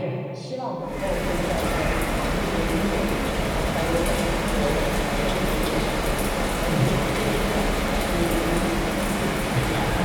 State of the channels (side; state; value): both; identical; correlation 1.00